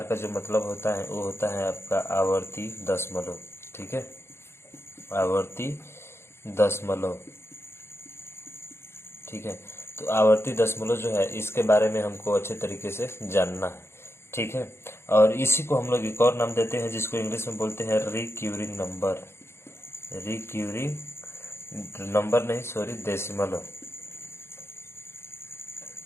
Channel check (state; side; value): late; right; 0.12 ms